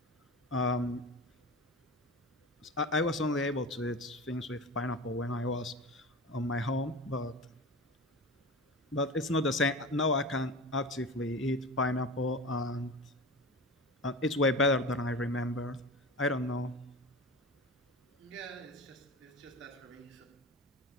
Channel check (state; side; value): normal; both; correlation 0.30